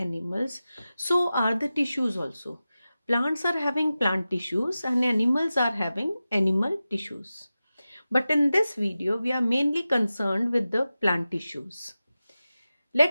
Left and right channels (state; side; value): inverted; both; correlation -0.94